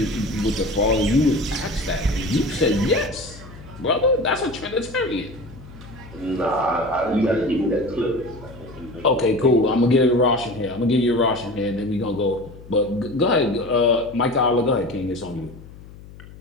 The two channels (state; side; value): noise; left; hum, 18 dB below the sound